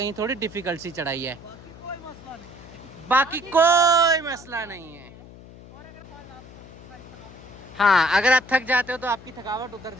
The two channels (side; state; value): left; noise; hum, 18 dB below the sound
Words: थोड़ी डिफिकल्ट सी चढ़ाई है। बाकी कोई मसला नहीं है। हाँ, अगर आप थक जाते हो तो आपकी थकावट उतर